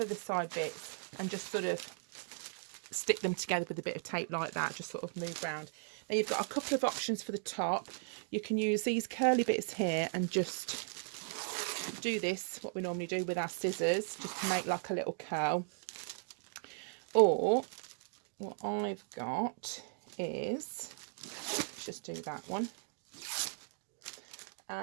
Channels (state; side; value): silent; left; digital silence